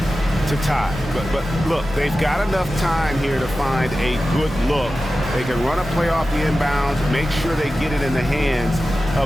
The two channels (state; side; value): normal; both; correlation 0.94